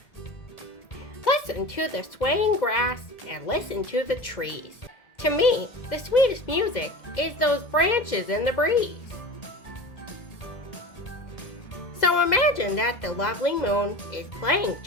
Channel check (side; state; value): right; late; 2.0 ms